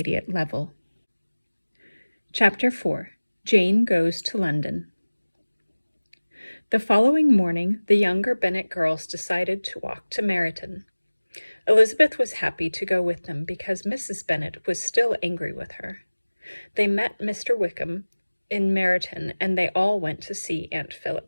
level. Chapter 4. Jane Goes to London. The following morning, the younger Bennet girls decided to walk to Meryton. Elizabeth was happy to go with them because Mrs. Bennet was still angry with her. They met Mr. Wickham in Meryton, and they all went to see Aunt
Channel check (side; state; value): both; inverted; correlation -1.00